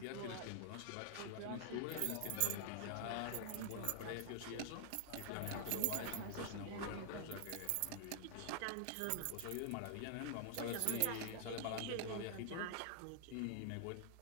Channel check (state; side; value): different; both; correlation 0.00